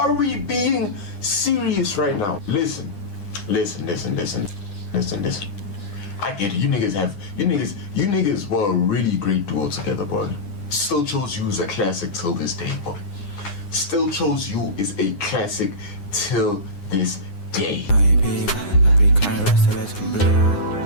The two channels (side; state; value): right; late; 9.8 ms